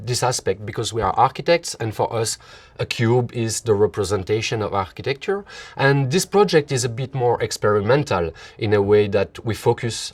this aspect because we are architects, and for us, a cube is the representation of architecture. And this project is a bit more experimental in a way that we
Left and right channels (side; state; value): both; identical; correlation 1.00